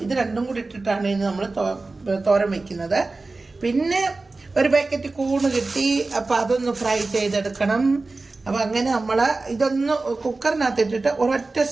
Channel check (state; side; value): quieter; left; 3.5 dB